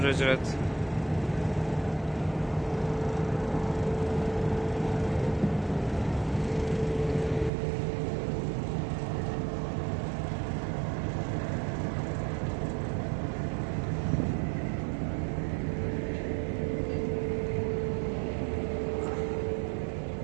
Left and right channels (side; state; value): left; drops out; at 7.5 s